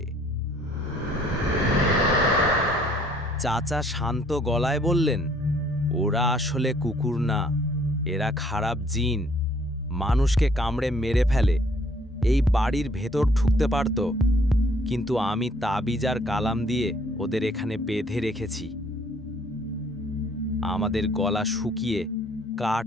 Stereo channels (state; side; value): normal; both; correlation 0.61